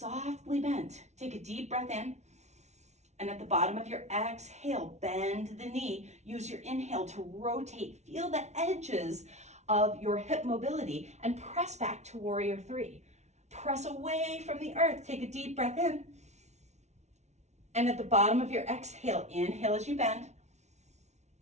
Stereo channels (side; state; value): left; late; 0.32 ms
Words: bent. Take a deep breath in. And at the bottom of your exhale, bend the knee. Use your inhale to rotate. Feel the edges of your hip mobility and press back to warrior three. Press away from the earth. Take a deep breath in. And at the bottom of your exhale, inhale as you bend.